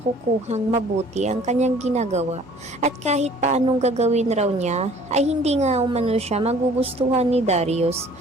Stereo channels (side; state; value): both; normal; correlation 0.53